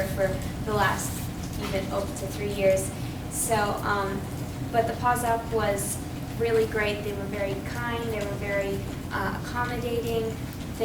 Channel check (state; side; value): identical; both; correlation 1.00